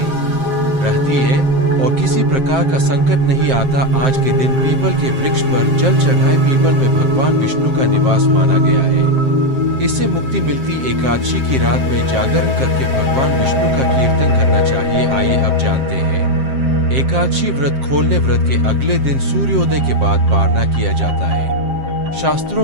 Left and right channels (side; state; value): left; late; 7.6 ms